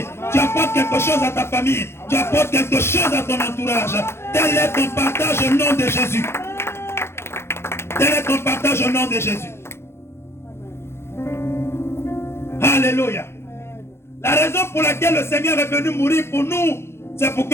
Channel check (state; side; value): late; right; 0.12 ms